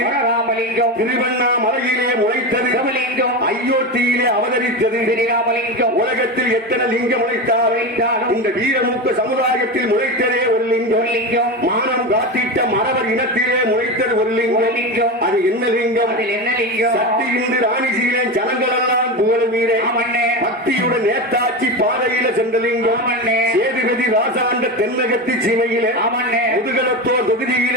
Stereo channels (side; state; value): both; normal; correlation 0.20